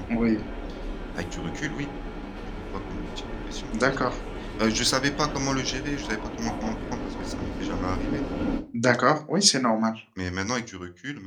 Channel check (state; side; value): identical; both; correlation 1.00